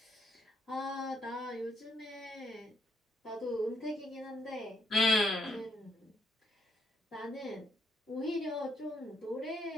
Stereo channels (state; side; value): normal; both; correlation 0.74